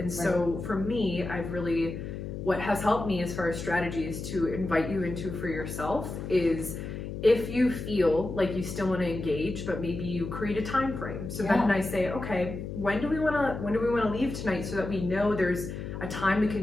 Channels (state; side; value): noise; left; hum, 7 dB below the sound